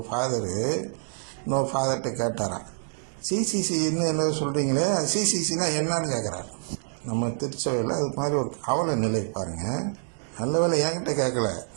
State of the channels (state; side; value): silent; left; digital silence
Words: ஃபாதரு இன்னொரு ஃபாதர்கிட்ட கேட்டாராம், சிசிசி என்ன சொல்றீங்களே, சிசிசினா என்னன்னு கேட்கிறார். நம்ம திருச்சபையில் அது மாதிரி ஒரு அவல நிலை பாருங்க. நல்ல வேலை என்கிட்ட கேட்கல,